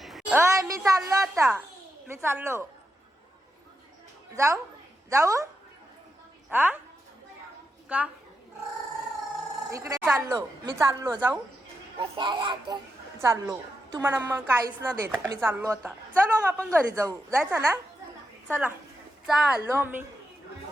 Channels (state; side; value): normal; both; correlation 0.86